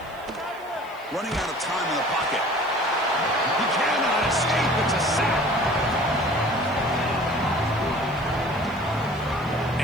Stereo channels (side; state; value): left; noise; hiss, 27 dB below the sound